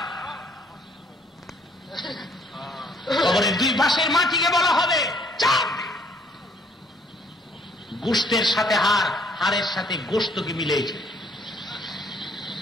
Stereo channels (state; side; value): normal; both; correlation 0.63